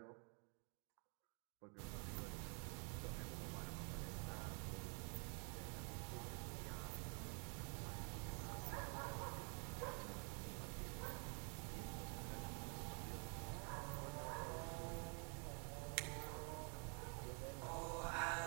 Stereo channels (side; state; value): left; quieter; 37.9 dB